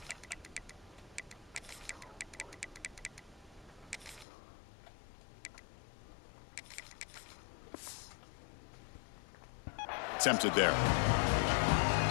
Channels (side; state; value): right; drops out; at 4.2 s